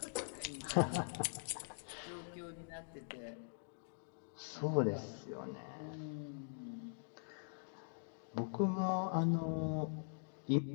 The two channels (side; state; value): right; silent; digital silence